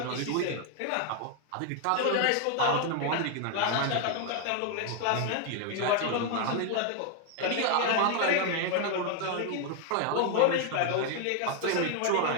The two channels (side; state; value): both; different; correlation 0.00